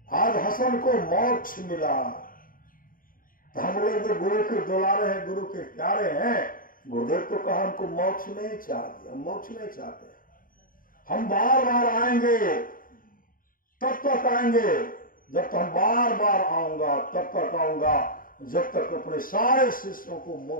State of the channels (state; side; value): late; right; 0.41 ms